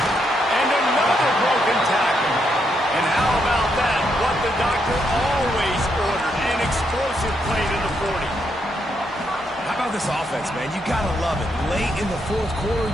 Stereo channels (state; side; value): normal; both; correlation 0.78